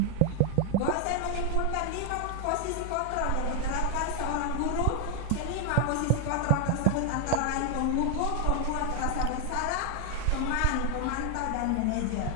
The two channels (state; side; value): different; both; correlation 0.00